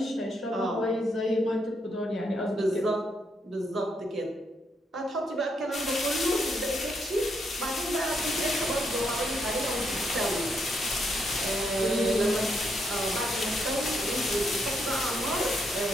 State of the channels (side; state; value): both; normal; correlation 0.77